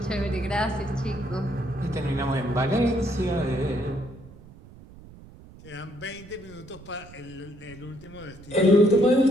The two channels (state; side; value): noise; right; rumble, 20 dB below the sound